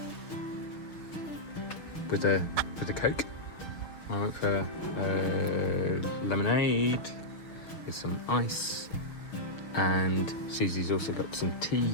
with a Coke. I went for lemonade with some ice, and Susie's also got some tea.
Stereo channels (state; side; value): late; right; 6.4 ms